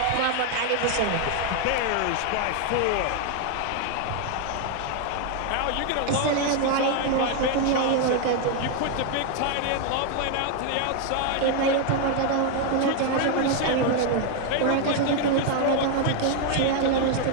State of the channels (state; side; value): different; both; correlation 0.00